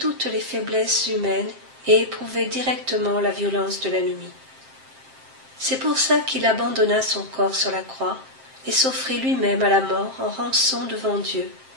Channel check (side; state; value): left; late; 7.6 ms